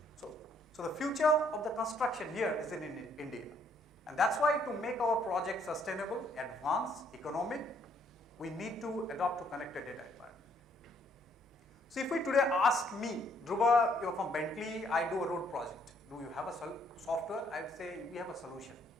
So the future of the construction here is in India, and that's why to make our project sustainable, advanced, economic, we need to adopt to connected data environment. So if we today ask me, Dhruba, you're from Bentley, I do a road project. Do you have a software? I would say we have a solution.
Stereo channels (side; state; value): both; normal; correlation 0.67